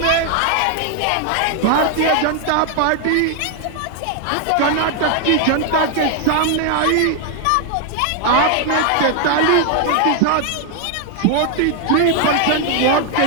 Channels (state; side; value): different; both; correlation 0.00